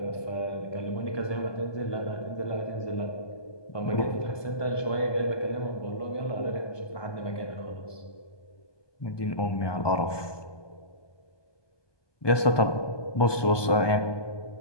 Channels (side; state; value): right; late; 1.2 ms